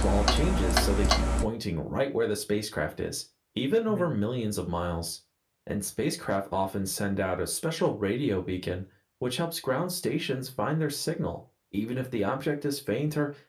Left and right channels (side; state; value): both; identical; correlation 1.00